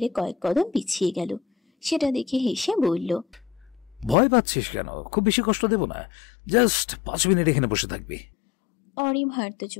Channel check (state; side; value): drops out; right; at 4.2 s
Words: কয়েক কদম পিছিয়ে গেল। সেটা দেখে হেসে বলল, ভয় পাচ্ছিস কেন? খুব বেশি কষ্ট দেব না, জাস্ট 5 মিনিট এখানে বসে থাকবি। অরি ভার্ত